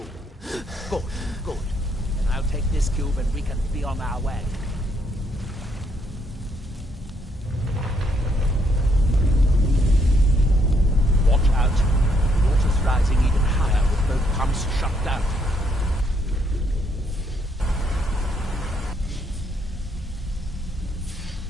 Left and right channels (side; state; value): both; normal; correlation 0.72